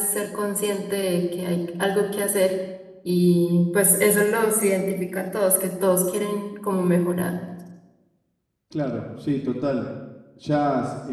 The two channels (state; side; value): identical; both; correlation 1.00